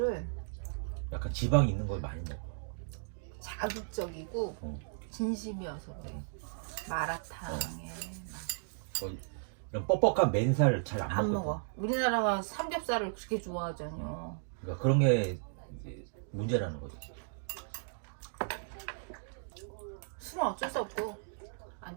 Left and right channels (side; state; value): left; silent; digital silence